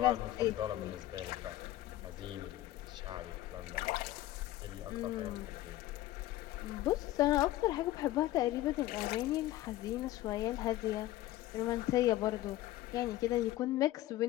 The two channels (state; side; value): quieter; right; 15.3 dB